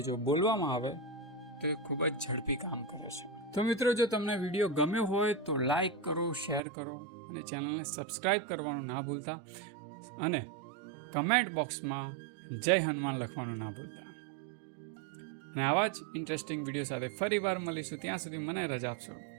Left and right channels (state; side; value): drops out; left; at 6.6 s